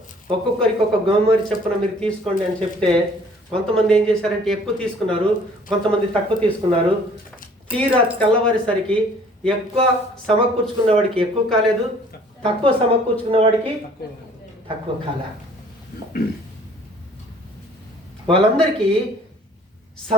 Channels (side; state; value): both; normal; correlation 0.54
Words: ఒక్కొక్కరికి ఒక గోమరి చొప్పున మీరు తీసుకోండి అని చెప్తే, కొంతమంది ఏం చేశారంటే ఎక్కువ తీసుకున్నారు, కొంతమంది తక్కువ తీసుకున్నారు. తీరా తెల్లవారేసరికి ఎక్కువ సమకూర్చుకున్న వాడికి ఎక్కువ కాలేదు, తక్కువ సమకూర్చుకున్న వాడికి తక్కువ కాలే. వాళ్ళందరికీ